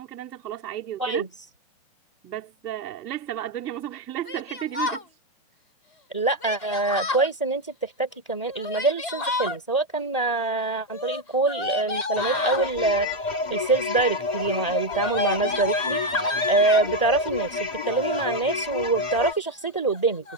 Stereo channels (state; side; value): late; right; 2.3 ms